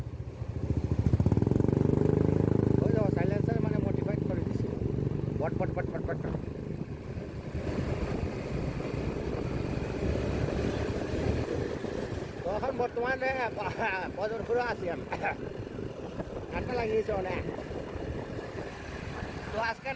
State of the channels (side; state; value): both; identical; correlation 1.00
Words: ওই দেখো সাইলেন্সার মানে মোটিফাইড করে দিচ্ছে বট বট বট বট বট। তো এখন বর্তমানে বদরপুরে আছি আমি, ঠান্ডা লাগিয়েছে অনেক। তো আজকের